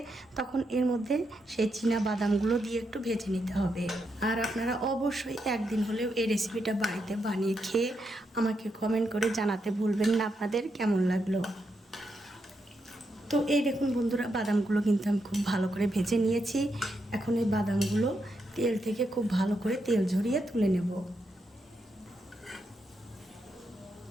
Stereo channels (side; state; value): both; normal; correlation 0.82